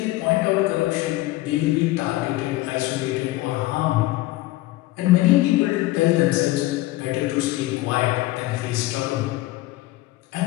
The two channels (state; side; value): quieter; right; 18.2 dB